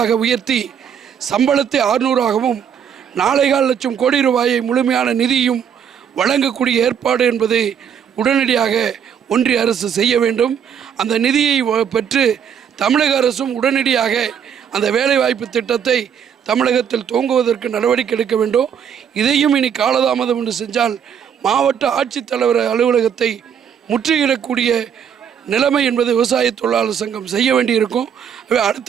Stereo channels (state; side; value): quieter; left; 8.0 dB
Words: உயர்த்தி சம்பளத்தை 600ஆகவும் 4.25 லட்சம் கோடி ரூபாயை முழுமையான நிதியும் வழங்கக்கூடிய ஏற்பாடு என்பதை உடனடியாக ஒன்றிய அரசு செய்ய வேண்டும். அந்த நிதியை பெற்று தமிழக அரசும் உடனடியாக அந்த வேலைவாய்ப்பு திட்டத்தை தமிழகத்தில் துவங்குவதற்கு நடவடிக்கை எடுக்க வேண்டும். இதையும் இனி காலதாமதம் என்று செஞ்சால் மாவட்ட ஆட்சித்தலைவர் அலுவலகத்தை முற்றுகையிடக்கூடிய நிலைமை என்பது விவசாய தொழிலாளர் சங்கம் செய்ய வேண்டியிருக்கும். அடுத்த